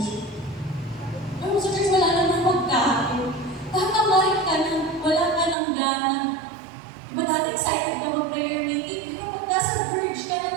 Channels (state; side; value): drops out; left; at 5.6 s